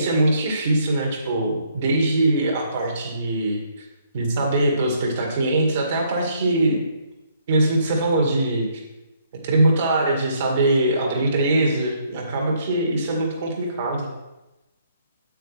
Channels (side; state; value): both; inverted; correlation -0.69